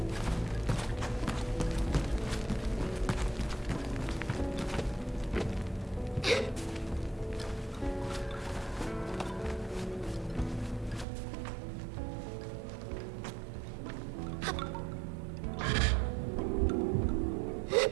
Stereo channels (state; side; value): drops out; left; at 11.1 s